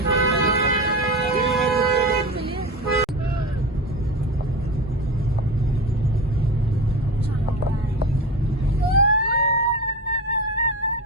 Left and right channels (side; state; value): both; normal; correlation 0.26